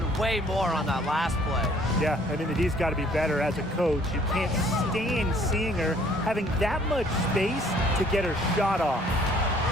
way more on that last play. Yeah, I mean, the D's got to be better as a coach. You can't stand seeing her having that much space to get her shot off.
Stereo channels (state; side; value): normal; both; correlation 0.59